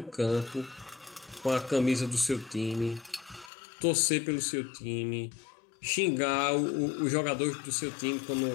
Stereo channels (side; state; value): right; drops out; at 3.5 s